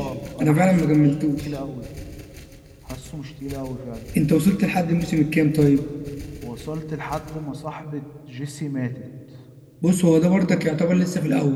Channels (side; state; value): both; identical; correlation 1.00